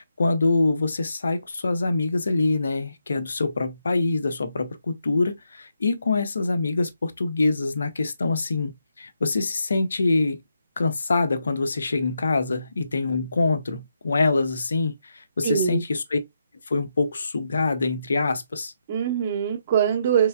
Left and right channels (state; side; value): inverted; both; correlation -0.81